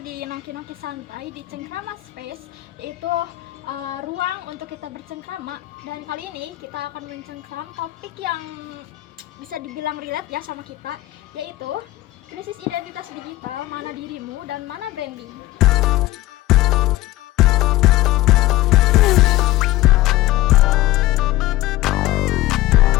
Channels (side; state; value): right; quieter; 17.0 dB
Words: nongki-nongki santai di Cengkrama Space, yaitu ruang untuk kita bercengkrama. Dan kali ini kita akan mencengkram topik yang bisa dibilang relate ya sama kita, yaitu krisis identitas digital, mana dirimu dan mana branding.